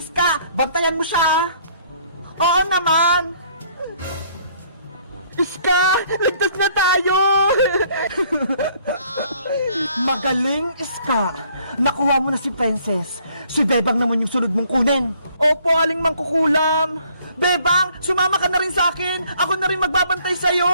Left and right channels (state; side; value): inverted; both; correlation -0.62